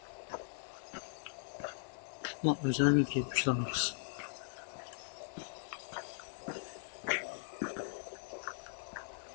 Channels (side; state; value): right; silent; digital silence